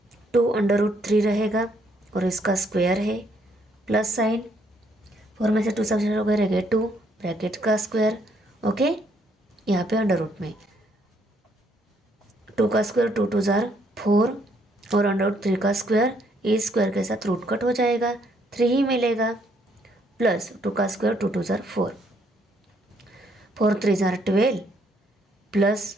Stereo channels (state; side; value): normal; both; correlation 0.70